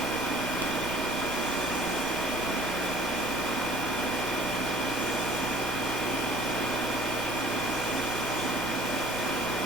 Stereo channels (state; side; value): normal; both; correlation 0.51